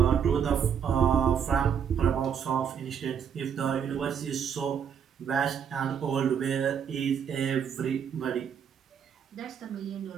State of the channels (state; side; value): quieter; left; 7.8 dB